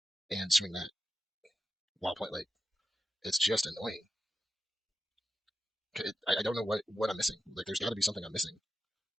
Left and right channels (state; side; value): normal; both; correlation 0.90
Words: and swing that while playing. Like, it's just annoying. I don't know what I'm missing. Like, there's got to be something I'm missing.